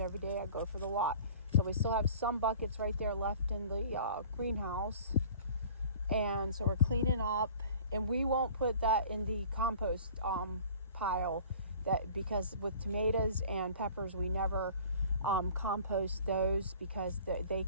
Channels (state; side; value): inverted; both; correlation -0.46